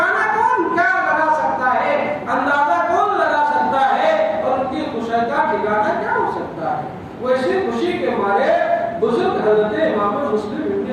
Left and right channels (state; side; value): identical; both; correlation 1.00